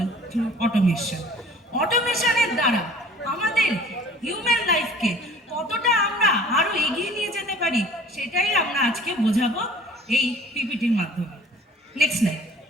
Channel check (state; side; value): normal; both; correlation 0.49